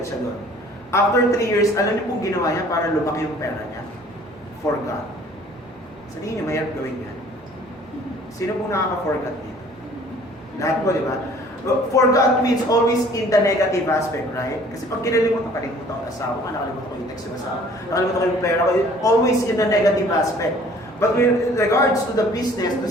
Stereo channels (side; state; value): both; normal; correlation 0.53